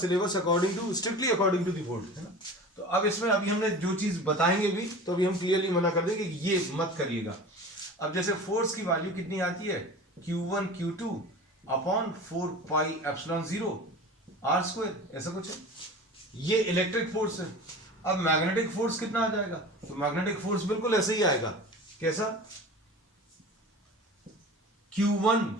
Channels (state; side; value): normal; both; correlation 0.36